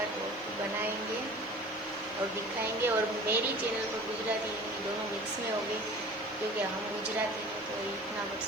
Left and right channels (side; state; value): left; noise; hiss, 29 dB below the sound